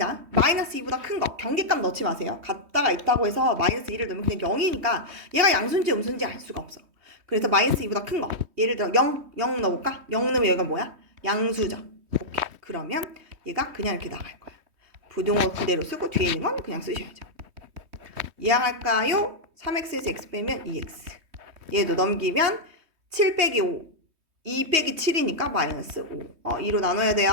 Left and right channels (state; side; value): late; left; 3.2 ms